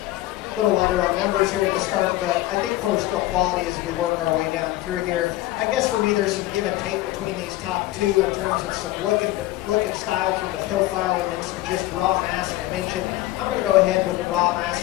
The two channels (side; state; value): right; quieter; 16.8 dB